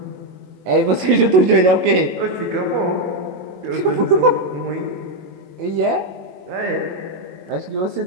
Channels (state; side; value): late; left; 22 ms